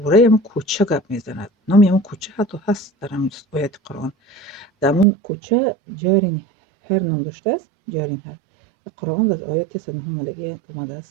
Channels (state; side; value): drops out; left; at 5.1 s